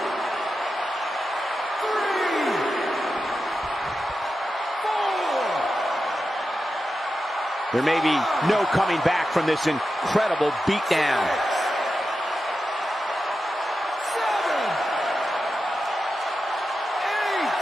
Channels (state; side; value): normal; both; correlation 0.90